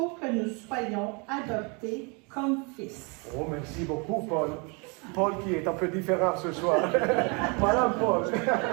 soyons adoptés comme fils. Oh, merci beaucoup, Paul. Paul qui est un peu différent ce soir. Voilà, Paul.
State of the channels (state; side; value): quieter; left; 32.3 dB